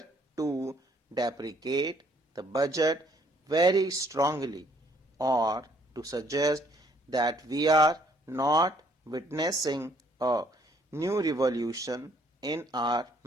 to deprecate the budget very strongly or to suggest that we are not witnessing a new revolution in our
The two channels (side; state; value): both; normal; correlation 0.64